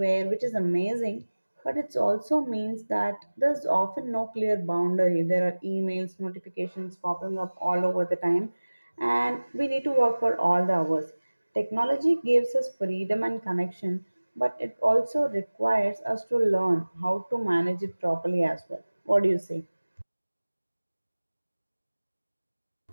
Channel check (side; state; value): both; inverted; correlation -1.00